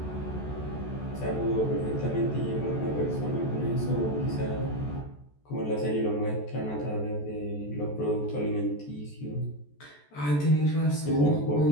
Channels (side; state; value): right; late; 14 ms